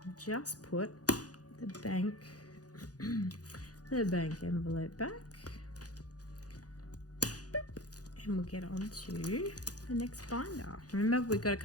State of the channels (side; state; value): right; late; 0.68 ms